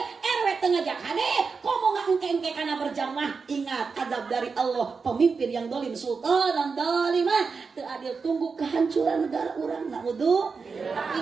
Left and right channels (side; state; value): left; quieter; 5.0 dB